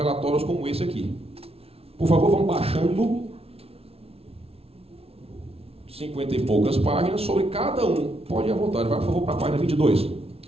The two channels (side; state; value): left; late; 0.29 ms